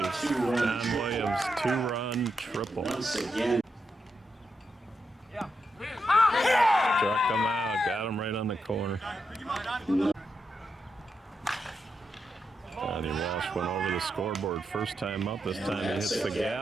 John Williams, 2-run triple. Once again. Struck him out, got him right on the corner. Johnny Walsh went over the scoreboard first time up. This time he hits the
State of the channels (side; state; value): both; normal; correlation 0.85